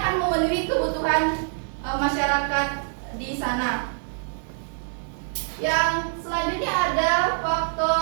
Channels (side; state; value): left; silent; digital silence